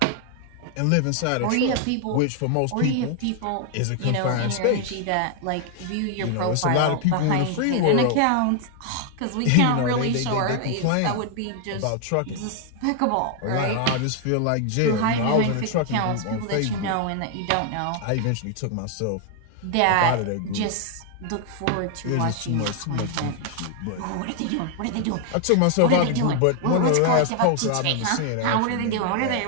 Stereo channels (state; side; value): different; both; correlation 0.00